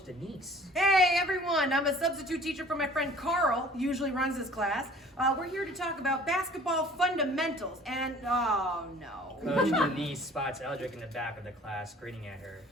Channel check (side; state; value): both; normal; correlation 0.50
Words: Denise. Hey everyone, I'm a substitute teacher for my friend Carl, who usually runs this class. We're here to talk about basketball fundamentals and, oh no. Coach Denise spots Eldrick in the back of the class, grinning at her.